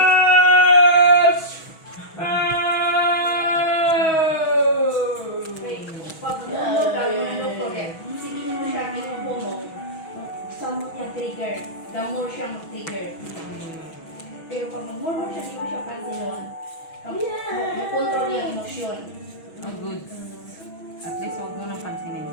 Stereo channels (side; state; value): right; late; 6.2 ms